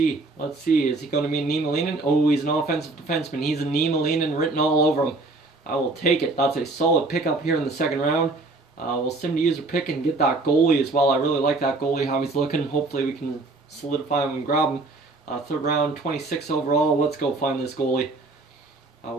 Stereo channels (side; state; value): left; quieter; 3.3 dB